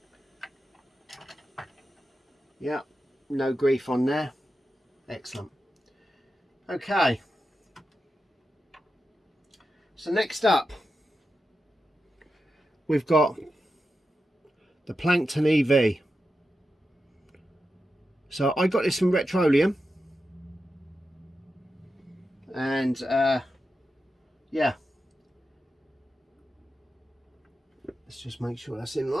Yeah, no grief on there. Excellent. Okay. So next up, we've got the Plankton EV. So I got this from Retroleum, and yeah, let's just make sure that's in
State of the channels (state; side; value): normal; both; correlation 0.90